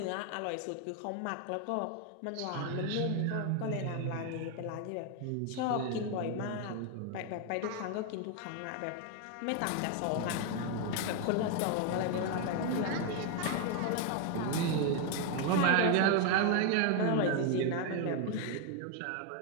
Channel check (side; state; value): both; different; correlation 0.01